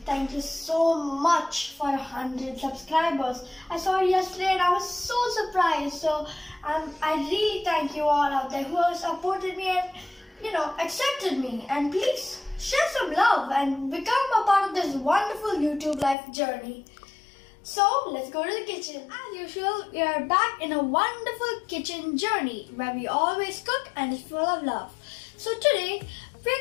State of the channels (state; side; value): drops out; right; at 16.2 s